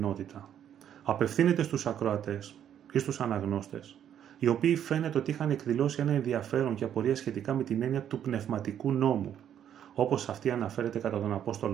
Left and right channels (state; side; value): quieter; left; 9.8 dB